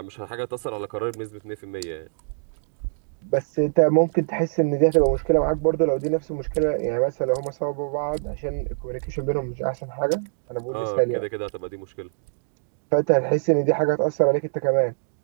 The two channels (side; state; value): left; silent; digital silence